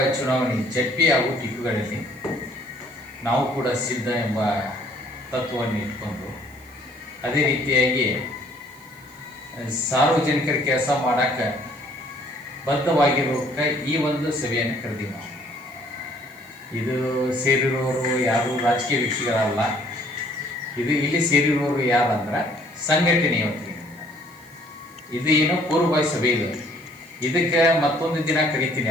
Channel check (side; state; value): right; noise; hiss, 26 dB below the sound